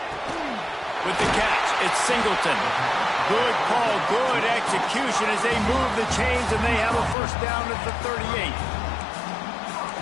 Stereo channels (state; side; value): drops out; right; at 7.2 s